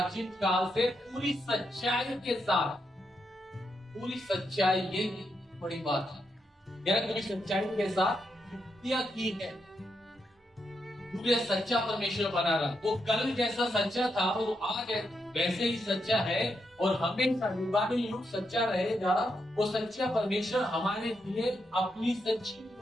काल से पूरी सच्चाई के साथ, पूरी सच्चाई, ये बड़ी बात है यार, पूरी सच्चाई के साथ युक्तियां की है। पूरे सच्चा परमेश्वर बना रहा, वो कल जैसा सच्चा था वो आज वैसे ही सच्चा है और हमेशा युगानुयुग सच्चा रहेगा। वो सच्चा परमेश्वर हमारे लिए अपनी सच्ची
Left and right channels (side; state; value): both; normal; correlation 0.82